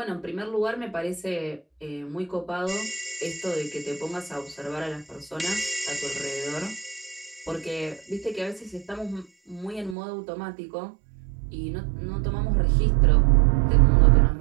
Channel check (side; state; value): left; drops out; at 10.0 s